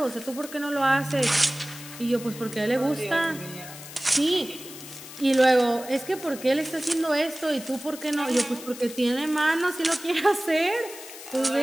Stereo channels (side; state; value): left; noise; hiss, 14 dB below the sound